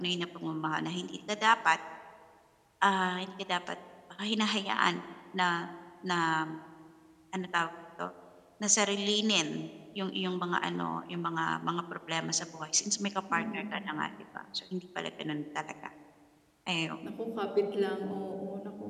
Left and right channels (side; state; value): both; identical; correlation 1.00